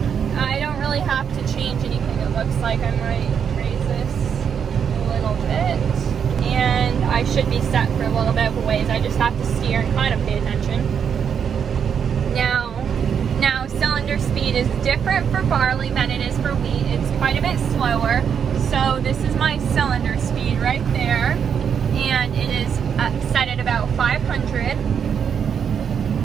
I don't really have to change anything. It looks like I might raise this a little bit, and I should be set for a little bit of a ways. I just have to steer and kind of pay attention. Now cylinder speed is different for barley than it is for wheat. It's quite a bit slower. So this is my cylinder speed right there, and it is set at about 500,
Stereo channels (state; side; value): quieter; left; 7.5 dB